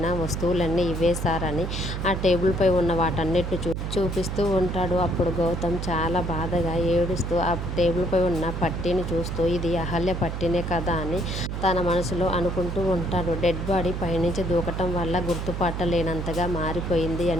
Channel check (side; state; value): right; noise; hum, 4 dB below the sound